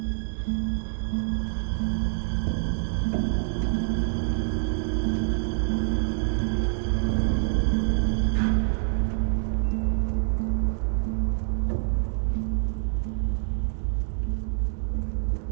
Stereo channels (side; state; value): left; silent; digital silence